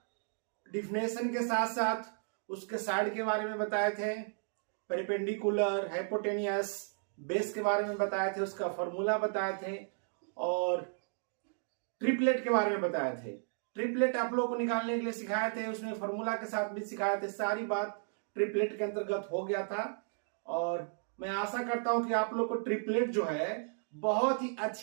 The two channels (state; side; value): silent; left; digital silence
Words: डिफिनेशन के साथ साथ उसके साइड के बारे में बताए थे, पेरिपेंडिकुलर, हाइपोटेनियस, बेस के बारे में बताए थे, उसका फॉर्मूला बताए थे और ट्रिपलेट के बारे में बताए थे। ट्रिपलेट आप लोगों को निकालने के लिए सिखाए थे, उसमें फॉर्मूला के साथ भी सिखाए थे। सारी बात ट्रिपलेट के अंतर्गत हो गया था और मैं आशा करता हूं कि आप लोग को ट्रिपलेट जो है बहुत ही